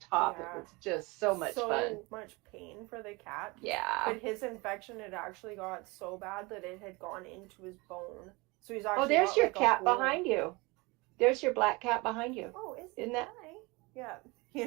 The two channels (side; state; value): left; quieter; 25.3 dB